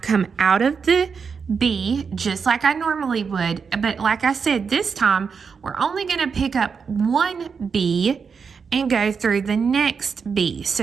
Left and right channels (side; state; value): left; quieter; 5.8 dB